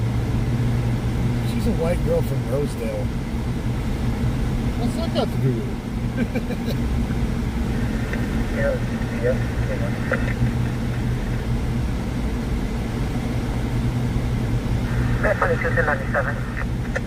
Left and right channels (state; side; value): identical; both; correlation 1.00